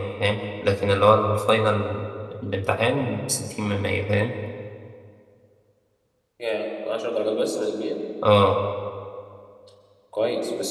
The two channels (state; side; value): identical; both; correlation 1.00